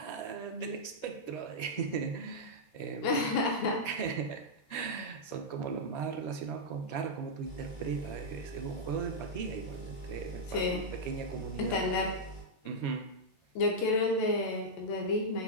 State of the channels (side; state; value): right; late; 14 ms